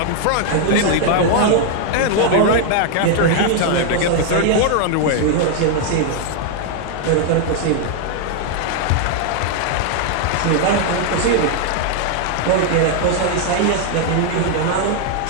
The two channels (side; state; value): both; different; correlation 0.00